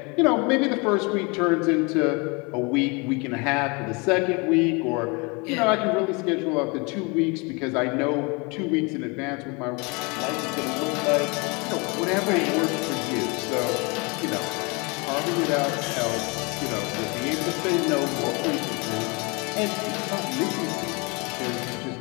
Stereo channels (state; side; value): quieter; right; 29.3 dB